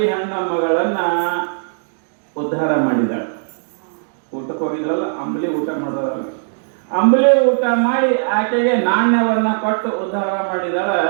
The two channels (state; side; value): silent; left; digital silence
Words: ಹೆಣ್ಣ ಮಗಳನ್ನ ಉದ್ಧಾರ ಮಾಡಿದಾಳೆ. ಊಟಕ್ಕೆ ಹೋಗಿದ್ರಲ್ಲ, ಅಂಬಲಿ ಊಟ ಮಾಡಿದವಲ್ಲ, ಅಂಬಲಿ ಊಟ ಮಾಡಿ ಆಕೆಗೆ ನಾಣ್ಯವನ್ನ ಕೊಟ್ಟು ಉದ್ಧಾರ ಮಾಡಿದಾಳ.